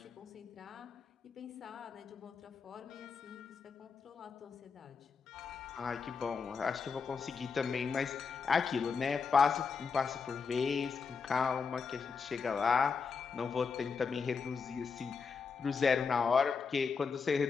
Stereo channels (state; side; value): quieter; right; 5.4 dB